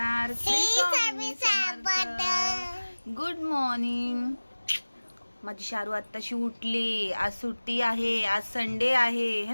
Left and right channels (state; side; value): inverted; both; correlation -1.00